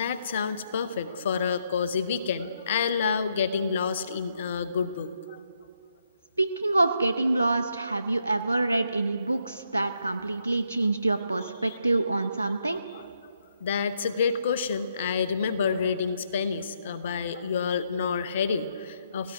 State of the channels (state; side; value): inverted; both; correlation -0.77